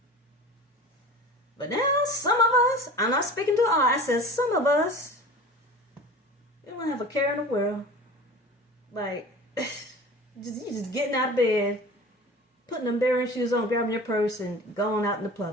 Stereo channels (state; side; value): normal; both; correlation 0.38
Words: But now, some of us, I'm not speaking to all, I said some of us, we don't have a care in the world. Like, you just getting out of bed, putting them bearing shoes on, grabbing your purse, and going out in the